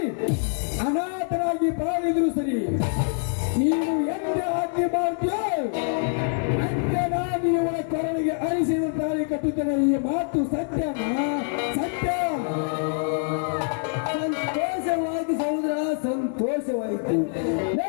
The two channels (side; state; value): right; silent; 62 dB below the other